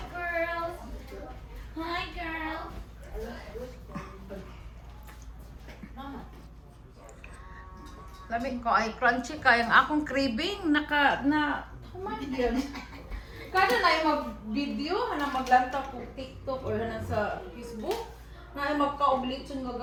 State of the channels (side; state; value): both; identical; correlation 1.00